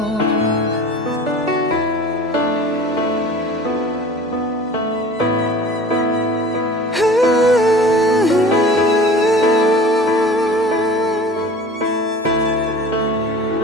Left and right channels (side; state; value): both; normal; correlation 0.42